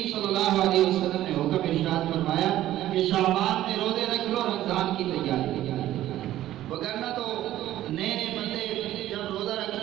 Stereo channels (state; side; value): quieter; left; 13.7 dB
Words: صلی اللہ علیہ وسلم نے حکم ارشاد فرمایا کہ شعبان میں روزے رکھ لو، رمضان کی تیاری۔ وگرنہ تو نئے نئے بندے جب روزہ